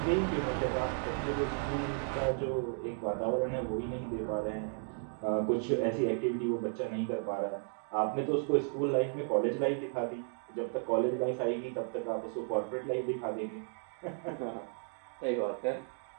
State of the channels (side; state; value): left; silent; 55 dB below the other